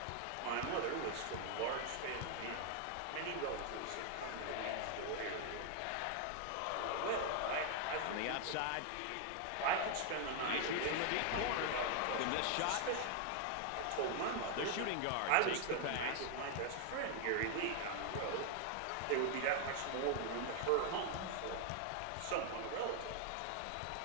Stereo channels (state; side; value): different; both; correlation 0.00